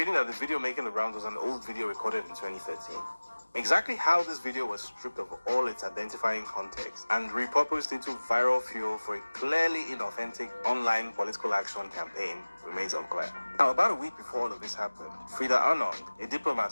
that the video making the rounds was an old video recorded in 2013. Exactly how this video was stripped of all its identifying context and repurposed into viral fuel for a clearly inauthentic online political action campaign remains unclear. Now, about a week before all of this happened, Frida Arnold, a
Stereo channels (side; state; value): both; inverted; correlation -1.00